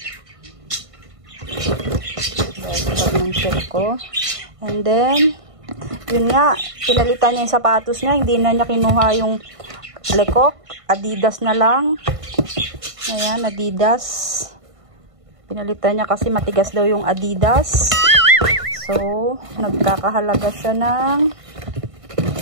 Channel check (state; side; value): late; left; 1.5 ms